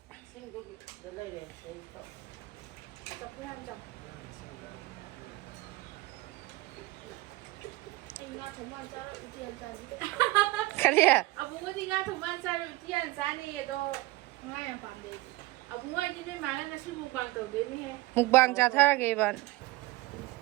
ꯀꯔꯤ ꯑꯕꯨꯡꯉꯣꯗꯤ ꯉꯥ ꯊꯣꯡꯕ ꯆꯥꯔꯣꯏ ꯎꯇꯤ ꯌꯥꯝ ꯆꯥꯅꯤꯌꯦ ꯑꯗꯣ ꯉꯥ ꯌꯥꯝ ꯄꯥꯝꯗꯦ ꯑꯕꯨꯡꯉꯣ ꯑꯩꯗꯤ ꯅꯣꯏ ꯃꯥꯒ ꯉꯁꯤ ꯃꯨꯛꯕꯥꯡ ꯇꯧꯗꯣꯏꯅꯦꯍꯦ ꯃꯨꯛꯕꯥꯡ ꯆꯥꯊꯔꯒꯦ ꯏꯕꯥꯟ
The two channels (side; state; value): left; quieter; 20.0 dB